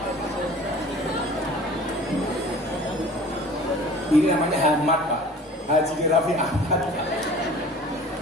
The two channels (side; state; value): both; normal; correlation 0.44